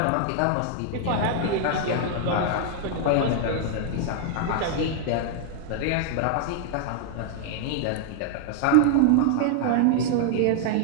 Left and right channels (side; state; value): both; different; correlation 0.00